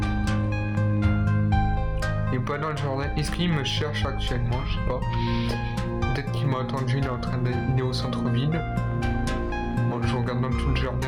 Il n'est pas dans le jardin. Est-ce qu'il me cherche actuellement? Je sais pas. Peut-être qu'il m'a attendu, il est au centre-ville. Bon, je regarde dans tout le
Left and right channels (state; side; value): identical; both; correlation 1.00